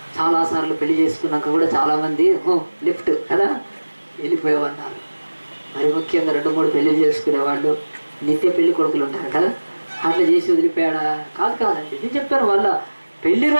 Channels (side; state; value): both; inverted; correlation -1.00